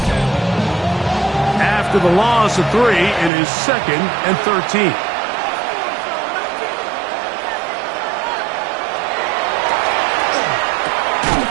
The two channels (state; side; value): drops out; left; at 3.3 s